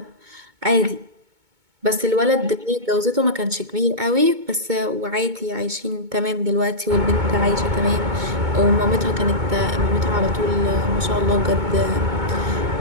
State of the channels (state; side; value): late; left; 2.2 ms